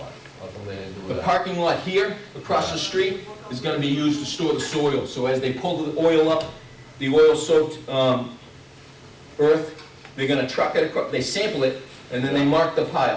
How come they didn't do The that? parking lot here, across the street, is gonna be used to store the soil. So as they pull the oil up, the oil-soaked earth, they're gonna truck it across, they sample it, and then they mark the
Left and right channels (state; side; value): identical; both; correlation 1.00